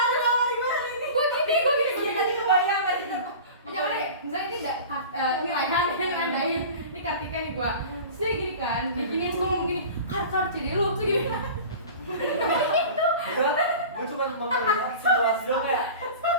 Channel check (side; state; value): both; inverted; correlation -0.37